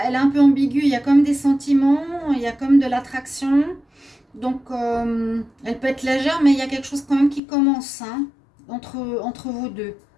un peu ambiguë. Il y a comme des sentiments, il y a comme de l'attraction. Donc, elle peut être légère, mais il y a quelque chose quand même qui commence entre vous deux.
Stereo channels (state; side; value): drops out; right; at 7.4 s